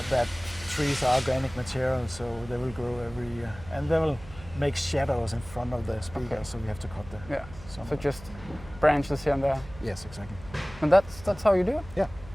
that trees are organic material, so they will grow every year, and they will make shadows in front of the speakers, so we have to cut them. Yeah. So just branches here and there. Yes, exactly. And that's how you do it? Yeah.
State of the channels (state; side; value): noise; right; hum, 17 dB below the sound